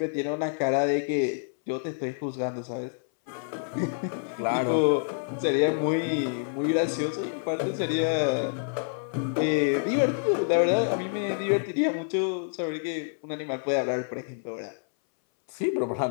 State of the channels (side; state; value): right; silent; 60 dB below the other